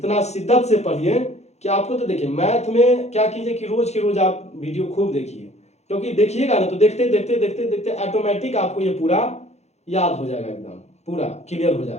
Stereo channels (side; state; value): right; late; 0.32 ms